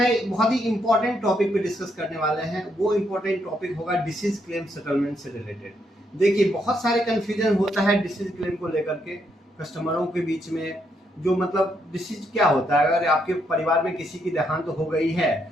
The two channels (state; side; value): normal; both; correlation 0.77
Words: बहुत ही इंपॉर्टेंट टॉपिक पे डिस्कस करने वाले हैं। वो इंपॉर्टेंट टॉपिक होगा डिसीज क्लेम सेटलमेंट से रिलेटेड। देखिए, बहुत सारे कंफ्यूजन होता है डिसीज क्लेम को लेकर के कस्टमरों के बीच में। जो मतलब डिसीज क्या होता है, अगर आपके परिवार में किसी की देहांत हो गई है